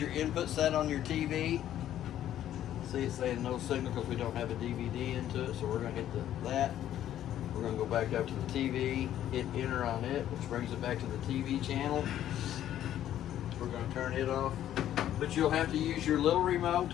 input set on your TV. See, it's saying no signal because we don't have a DVD into it, so we're going to hit that. We're going to go back up to the TV, hit enter on it, which brings it back to the TV channel. We're going to turn it off. But you'll have to use your little remote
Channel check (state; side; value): quieter; right; 11.6 dB